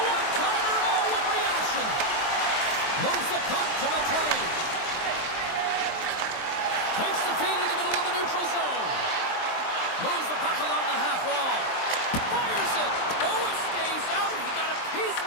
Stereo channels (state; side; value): late; right; 23 ms